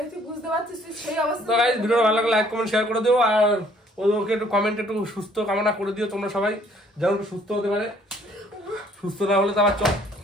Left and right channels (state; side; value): normal; both; correlation 0.61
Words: বুঝতে পারছিস তুই সেই অবস্থা। তো গাইস, ভিডিও ভালো লাগলে লাইক কমেন্ট শেয়ার করে দিও, আর ওকে একটু কমেন্টে একটু সুস্থ কামনা করে দিও তোমরা সবাই, যেন একটু সুস্থ হতে পারে। সুস্থ না হলে তো আবার চল।